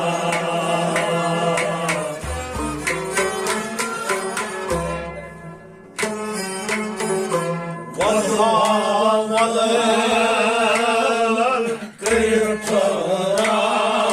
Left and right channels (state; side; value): identical; both; correlation 1.00